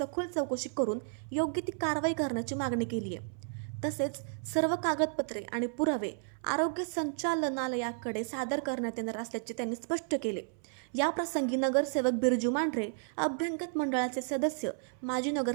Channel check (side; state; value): left; silent; 56 dB below the other